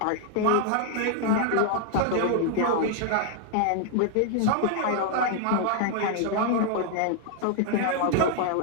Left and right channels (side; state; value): both; different; correlation 0.00